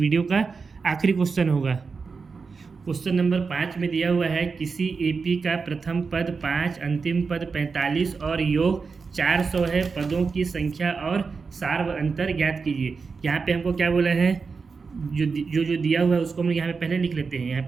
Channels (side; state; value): left; quieter; 4.9 dB